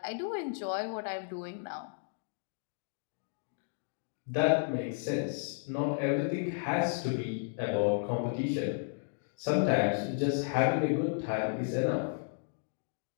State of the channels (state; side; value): silent; right; digital silence